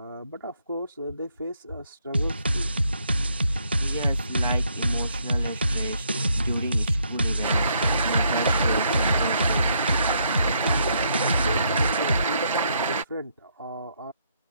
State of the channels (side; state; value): both; inverted; correlation -0.73